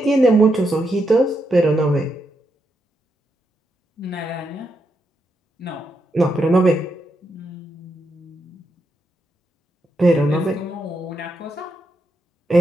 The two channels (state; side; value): normal; both; correlation 0.82